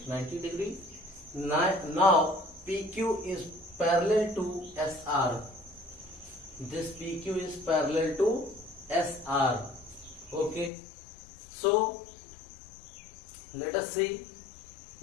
90 degree. Now PQ is parallel to SR. This PQ is parallel to SR. Okay. So let us see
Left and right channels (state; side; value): drops out; right; at 10.7 s